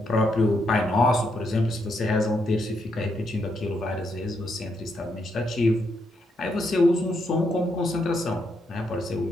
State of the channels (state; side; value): normal; both; correlation 0.78